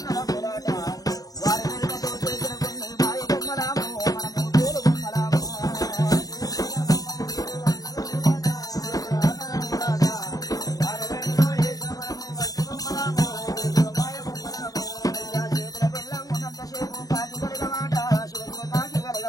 వారి వెనుకతో చేసిన కొన్ని మాయ బొమ్మలాము మనము తోలు బొమ్మలాము. చేతుల బెల్లం ఉన్నంతసేపు కాకి కలగమాట, శివశివ కాకి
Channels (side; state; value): right; late; 0.18 ms